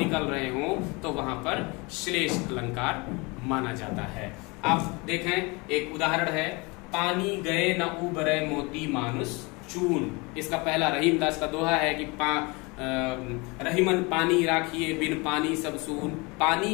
रहे हो तो वहां पर श्लेष अलंकार माना जाता है। आप देखें एक उदाहरण है, पानी गए न उबरे मोती मानुष चून। इसका पहला रहीम दास का दोहा है कि रहीमन पानी राखिए बिन पानी सब सून,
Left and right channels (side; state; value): right; quieter; 27.2 dB